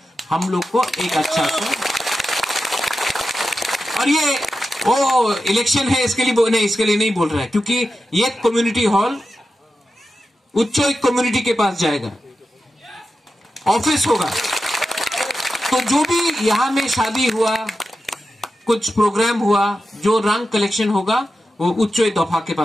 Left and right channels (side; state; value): both; normal; correlation 0.91